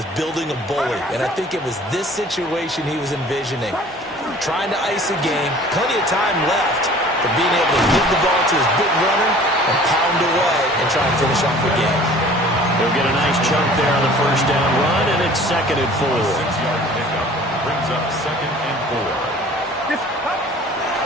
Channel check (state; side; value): normal; both; correlation 0.48